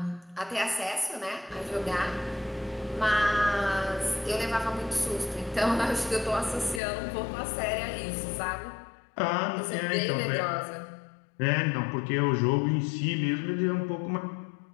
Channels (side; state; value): right; drops out; at 6.8 s